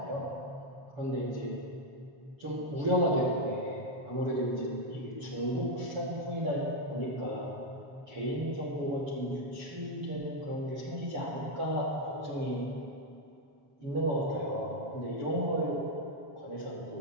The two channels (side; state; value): left; late; 7.3 ms